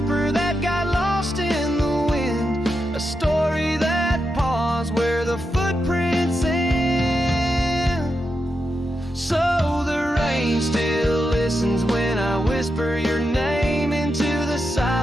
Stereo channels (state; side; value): normal; both; correlation 0.87